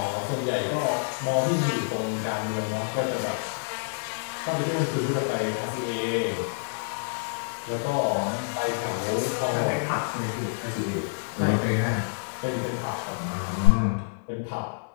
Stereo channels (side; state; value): right; silent; digital silence